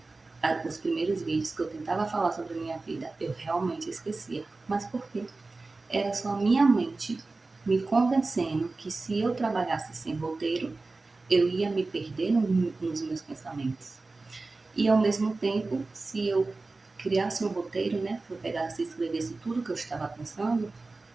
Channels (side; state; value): left; quieter; 3.5 dB